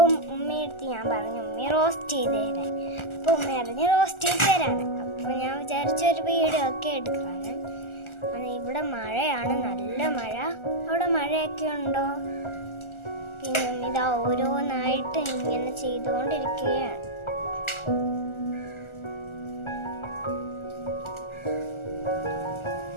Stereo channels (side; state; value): right; late; 1.4 ms